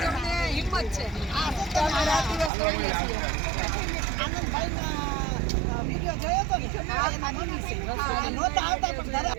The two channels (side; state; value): left; drops out; at 2.5 s